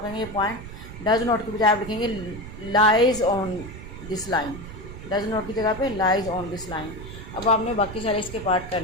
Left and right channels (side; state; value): right; noise; rumble, 12 dB below the sound